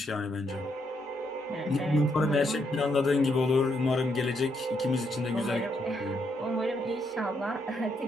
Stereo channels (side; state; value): both; normal; correlation 0.76